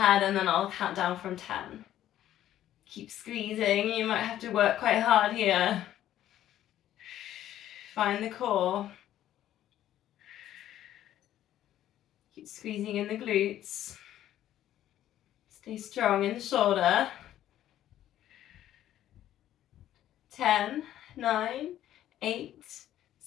and then I'll count down from 10. Keep squeezing. You might have to work quite hard here. Find the core. Keep squeezing in the glutes. Stay strong in the shoulder. 10, 9, 8,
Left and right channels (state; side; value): quieter; right; 12.3 dB